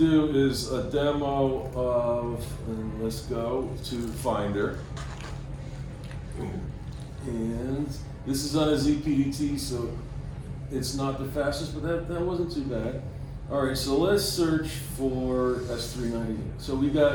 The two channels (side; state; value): both; identical; correlation 1.00